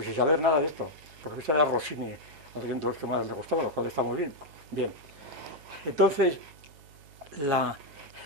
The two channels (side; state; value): left; late; 7.0 ms